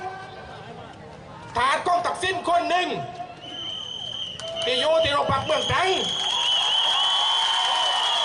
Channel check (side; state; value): both; identical; correlation 1.00